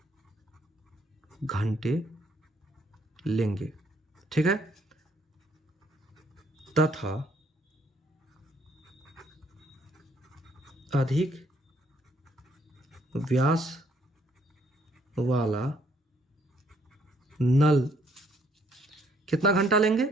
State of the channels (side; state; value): both; normal; correlation 0.67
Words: घंटे लेंगे, ठीक है, तथा अधिक व्यास वाला नल कितना घंटा लेंगे?